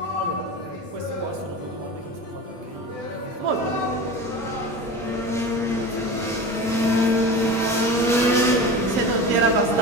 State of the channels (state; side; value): normal; both; correlation 0.31